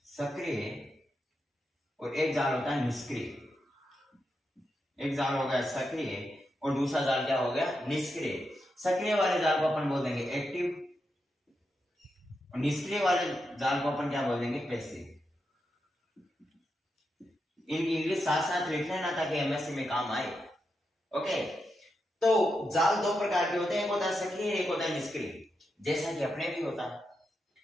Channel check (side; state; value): both; normal; correlation 0.86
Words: सक्रिय और एक जाल होता है निष्क्रिय। एक जाल हो गया सक्रिय और दूसरा जाल क्या हो गया, निष्क्रिय। सक्रिय वाले जाल को अपन बोल देंगे एक्टिव, और निष्क्रिय वाले जाल को अपन क्या बोल देंगे, पैसिव। इनकी इंग्लिश साथ साथ लिख लेना ताकि एमएससी में काम आए। ओके, तो जाल दो प्रकार के होते हैं, एक होता है सक्रिय, एक होता है निष्क्रिय, जैसा कि अपने भी होता है।